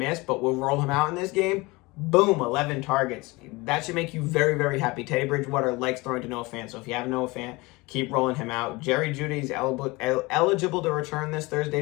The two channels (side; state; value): right; quieter; 23.4 dB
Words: but we'll roll him out in this game. Boom, 11 targets. That should make you very, very happy. Teddy Bridgewater likes throwing to Noah Fant, so if you have Noah Fant, keep rolling him out. Jerry Jeudy's eligible to return this